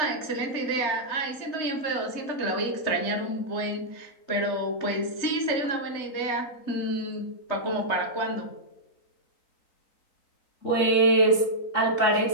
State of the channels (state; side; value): late; right; 3.9 ms